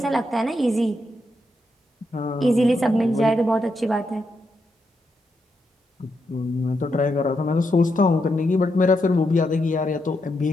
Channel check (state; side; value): normal; both; correlation 0.82